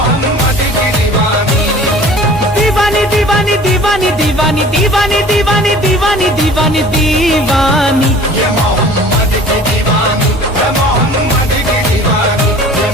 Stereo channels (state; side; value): normal; both; correlation 0.46